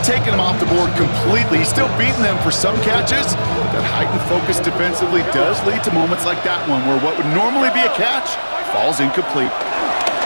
taken him off the board completely. He's still beating them for some catches. That heightened focus defensively does lead to moments like that one, where what would normally be a catch falls incomplete.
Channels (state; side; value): inverted; both; correlation -1.00